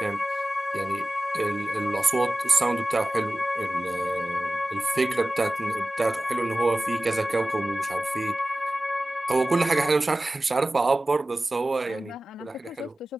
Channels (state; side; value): normal; both; correlation 0.96